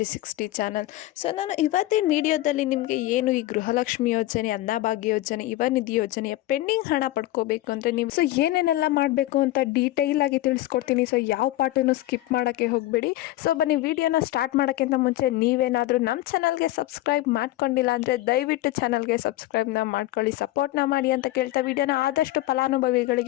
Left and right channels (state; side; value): quieter; right; 16.3 dB